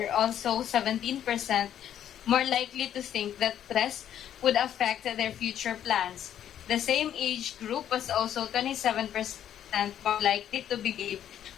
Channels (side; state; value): right; quieter; 10.3 dB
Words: also 17% more likely to think that stress would affect their future plans. The same age group was also 27% more likely to believe